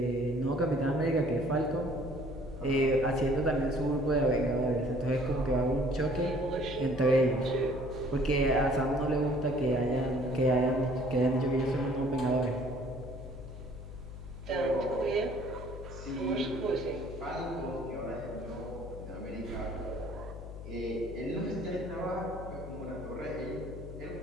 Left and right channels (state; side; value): noise; left; hum, 11 dB below the sound